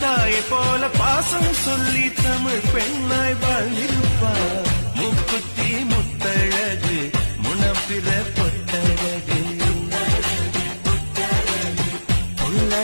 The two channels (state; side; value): inverted; both; correlation -1.00